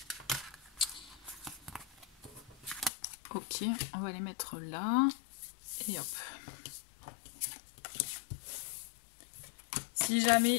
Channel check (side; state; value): right; drops out; at 2.9 s